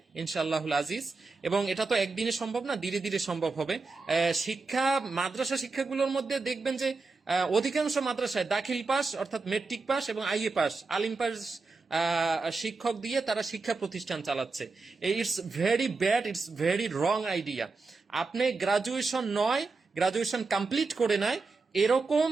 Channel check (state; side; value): quieter; left; 4.0 dB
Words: ইনশাআল্লাহুল আজিজ। এবং এটা তো একদিনে সম্ভব না, ধীরে ধীরে সম্ভব হবে। মাদ্রাসা শিক্ষাগুলোর মধ্যে দেখবেন যে অধিকাংশ মাদ্রাসায় দাখিল পাস অর্থাৎ মেট্রিক পাস এবং আইএ পাস, আলিম পাস শিক্ষক দিয়ে তারা শিক্ষা প্রতিষ্ঠান চালাচ্ছে। It's very bad, it's very wrong idea. আপনি গ্রাজুয়েশন কমপ্লিট করে নেয় এরকম